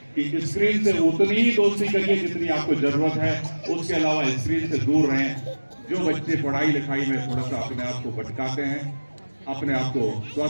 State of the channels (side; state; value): both; inverted; correlation -1.00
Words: कि स्क्रीन से उतनी ही दोस्ती करिए जितनी आपको जरूरत है, उसके अलावा स्क्रीन से दूर रहें। जो बच्चे पढ़ाई लिखाई में थोड़ा सा अपने आप को भटकाते हैं, अपने आप को